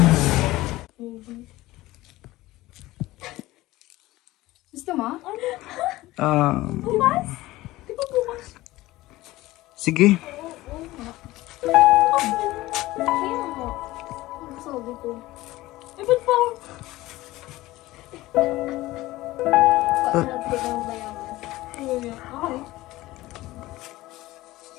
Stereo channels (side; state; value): right; quieter; 17.9 dB